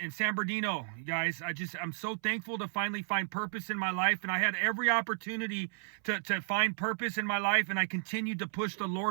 San Bernardino, you guys. I'm so thankful to finally find purpose in my life, and I had every opportunity to find purpose in my life, and I continued to push the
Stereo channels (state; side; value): silent; left; 56 dB below the other